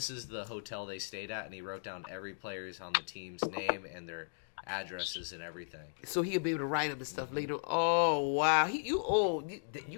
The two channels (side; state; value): right; silent; digital silence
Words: is the hotel they stayed at, and he wrote down every player's on the team's name and their addresses and everything. So he'll be able to write them and stuff later. Oh wow,